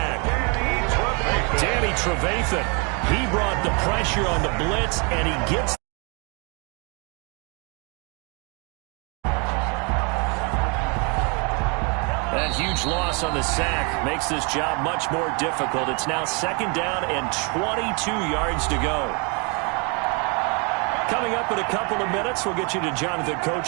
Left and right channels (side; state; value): left; quieter; 33.2 dB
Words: Danny Trevathan. He brought the pressure on the blitz, and he gets that huge loss on the sack makes this job much more difficult. It's now 2nd down and 22 yards to go. Coming up in a couple of minutes, we'll get you to Jonathan